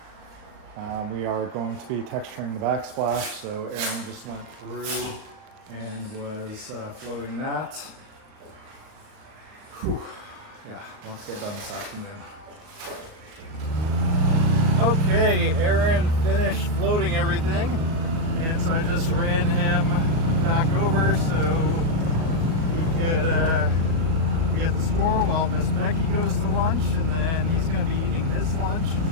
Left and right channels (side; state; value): left; late; 38 ms